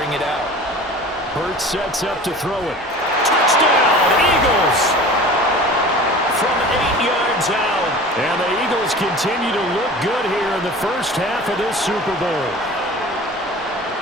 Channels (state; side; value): normal; both; correlation 0.39